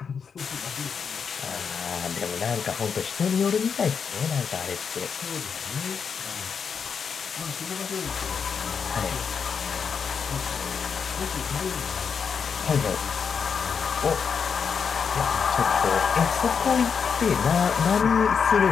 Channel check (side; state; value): right; quieter; 6.3 dB